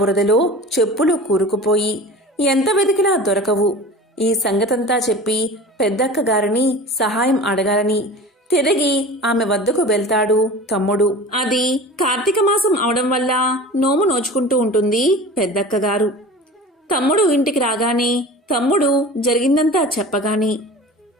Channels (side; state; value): both; normal; correlation 0.37